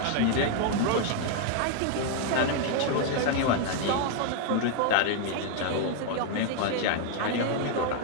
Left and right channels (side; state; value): both; different; correlation 0.00